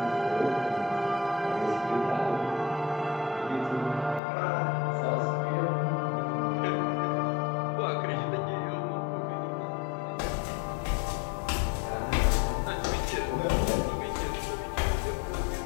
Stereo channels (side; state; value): right; drops out; at 4.2 s